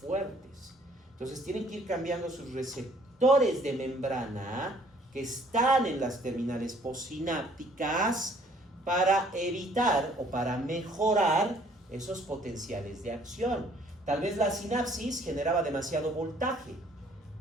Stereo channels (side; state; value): both; normal; correlation 0.60